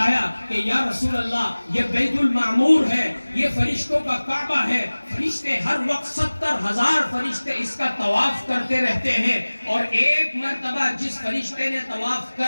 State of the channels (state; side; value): inverted; both; correlation -1.00